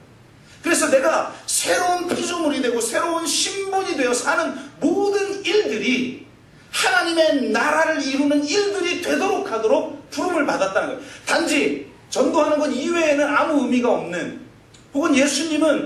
그래서 내가 새로운 피조물이 되고 새로운 신분이 되어 사는 모든 일들이 하나님의 나라를 이루는 일들이 되도록 하도록 부름을 받았다는 거예요. 단지 전도하는 것 이외에는 아무 의미가 없는, 혹은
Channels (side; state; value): both; identical; correlation 1.00